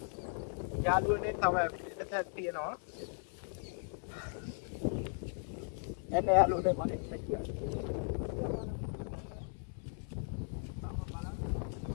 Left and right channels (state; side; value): silent; right; 53 dB below the other